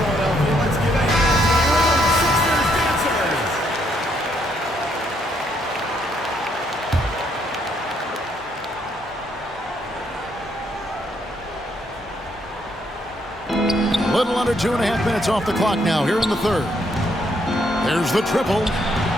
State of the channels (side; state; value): both; normal; correlation 0.72